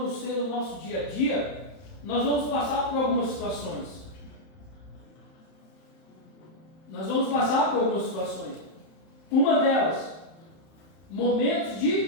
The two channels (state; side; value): late; right; 31 ms